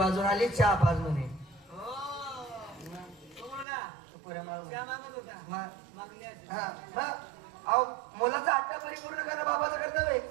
आली, चहा पाज म्हणे. मुलाचा हट्टा परिपूर्ण करणं बाबाचं कर्तव्य.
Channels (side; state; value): left; drops out; at 3.7 s